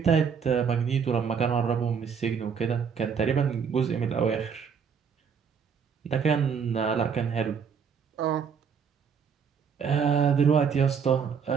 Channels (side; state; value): left; quieter; 6.6 dB